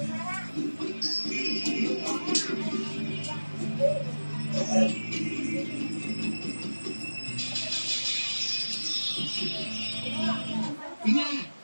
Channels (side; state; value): both; inverted; correlation -1.00